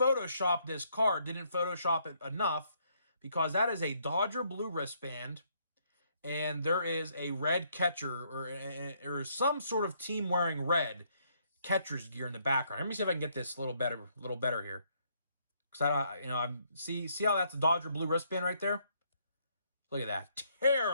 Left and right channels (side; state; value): both; inverted; correlation -0.70